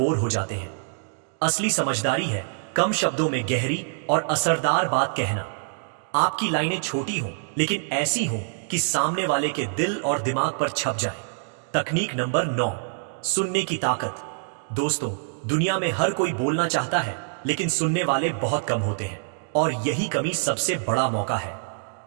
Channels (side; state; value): left; silent; digital silence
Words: हो जाते हैं। असली समझदारी है कम शब्दों में गहरी और असरदार बात कहना। आपकी लाइनें छोटी हों लेकिन ऐसी हों कि सामने वाले के दिल और दिमाग पर छप जाए। तकनीक नंबर 9, सुनने की ताकत। दोस्तों, दुनिया में हर कोई बोलना चाहता है लेकिन सुनने वाले बहुत कम होते हैं, और यही कमी सबसे बड़ा मौका है।